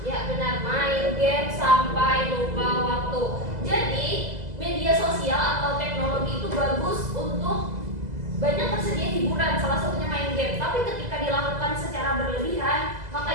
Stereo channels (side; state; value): left; late; 2.0 ms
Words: Ya, benar, main game sampai lupa waktu. Jadi media sosial atau teknologi itu bagus untuk banyak tersedia hiburan, salah satunya main game. Tapi ketika dilakukan secara berlebihan,